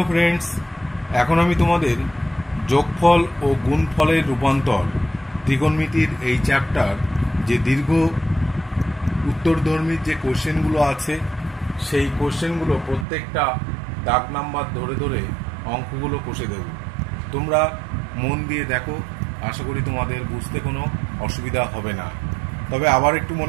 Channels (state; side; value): drops out; left; at 13.1 s